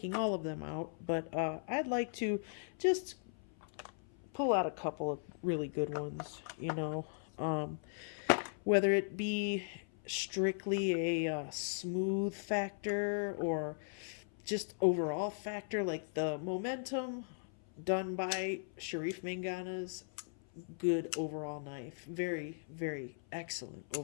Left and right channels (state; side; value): silent; right; 52 dB below the other